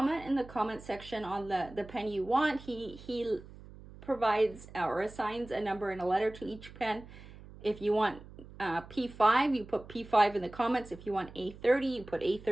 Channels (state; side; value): noise; right; hum, 18 dB below the sound